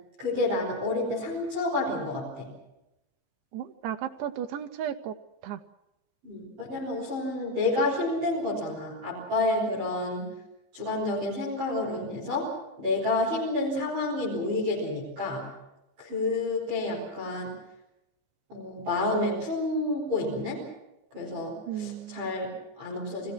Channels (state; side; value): late; left; 15 ms